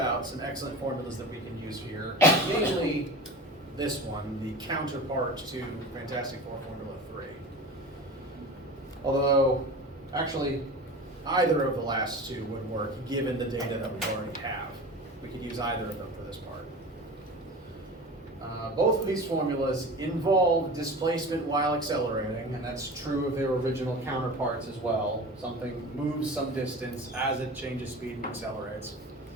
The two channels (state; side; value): normal; both; correlation 0.34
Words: some excellent formulas that we can use here. Mainly this one, the counterpart to Fantastic Four Formula 3. Although, actually, either of the last two would work given the data that we already have. We could use either of them for this part. Both of these formulas involve displacement while accelerating, and that's true of their original counterparts as well. Something moves some distance as it changes speed and accelerates.